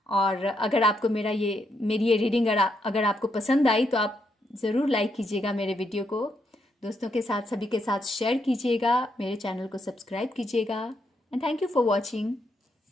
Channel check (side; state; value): both; normal; correlation 0.78